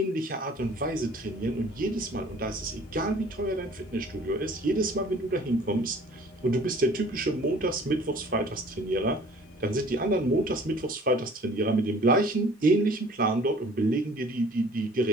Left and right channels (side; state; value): both; normal; correlation 0.51